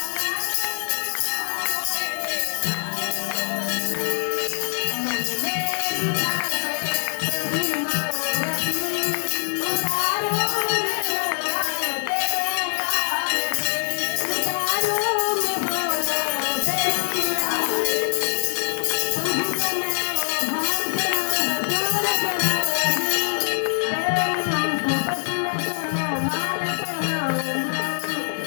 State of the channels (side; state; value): right; silent; digital silence